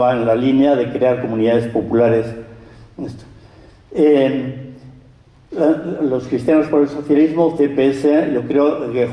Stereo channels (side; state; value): both; identical; correlation 1.00